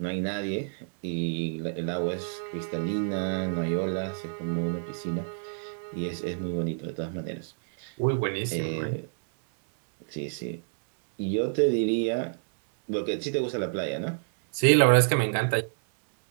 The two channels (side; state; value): left; silent; digital silence